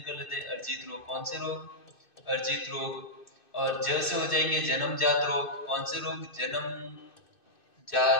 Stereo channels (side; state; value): right; late; 2.6 ms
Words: लेते हैं। अर्जित रोग, कौन से रोग, अर्जित रोग। और ज से हो जाएंगे जन्मजात रोग। कौन से रोग,